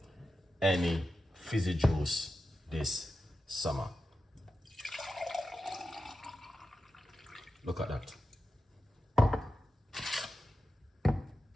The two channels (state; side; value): normal; both; correlation 0.92